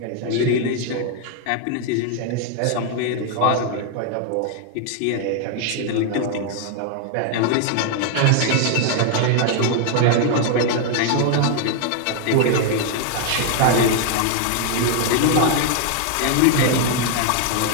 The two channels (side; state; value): both; different; correlation 0.00